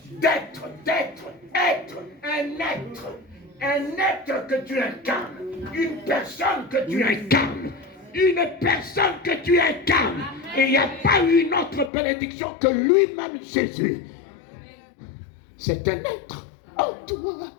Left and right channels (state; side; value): drops out; right; at 11.9 s